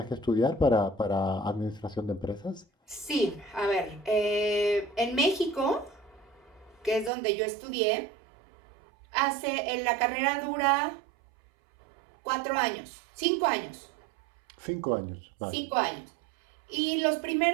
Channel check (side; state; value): left; drops out; at 7.1 s